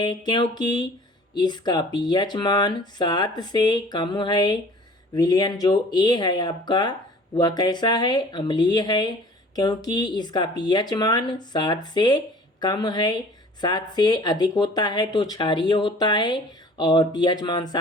क्योंकि इसका पीएच मान 7 से कम है। विलयन जो ए है आपका, वह कैसा है? अम्लीय है, क्योंकि इसका पीएच मान 7 से कम है। 7 से अधिक होता है तो क्षारीय होता है, और पीएच मान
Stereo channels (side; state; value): both; normal; correlation 0.48